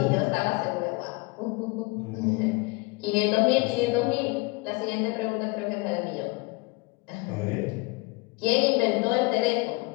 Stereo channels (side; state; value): right; quieter; 26.4 dB